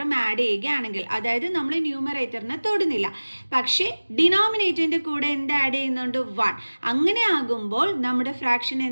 ആഡ് ചെയ്യുകയാണെങ്കിൽ, അതായത് നമ്മൾ ന്യൂമറേറ്ററിനെ തൊടുന്നില്ല, പക്ഷേ ഡിനോമിനേറ്ററിൻ്റെ കൂടെ എന്ത് ആഡ് ചെയ്യുന്നുണ്ട്, 1. അങ്ങനെ ആകുമ്പോൾ നമ്മുടെ ഫ്രാക്ഷൻ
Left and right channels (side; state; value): both; inverted; correlation -1.00